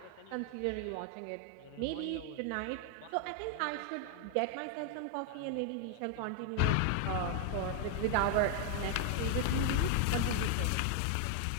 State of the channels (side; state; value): both; different; correlation 0.00